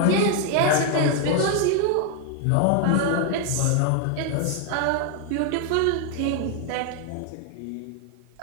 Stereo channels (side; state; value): both; different; correlation 0.00